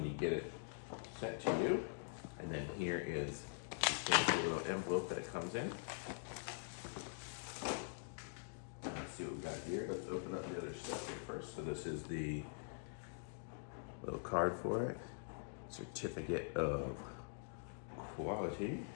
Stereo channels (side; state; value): right; silent; digital silence